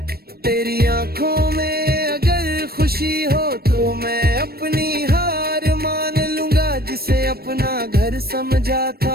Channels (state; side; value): late; left; 0.45 ms